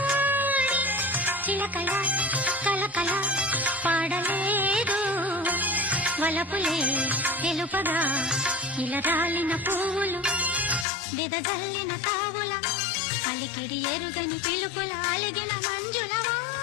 చిలకల కలకల పాడలేదు వలపులే తెలుపగా ఇలా రాలిన పువ్వులు బెదజల్లిన తావుల అలికిడి ఎరుగని పిలుపుల అలిగిన మంజుల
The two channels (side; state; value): right; drops out; at 10.9 s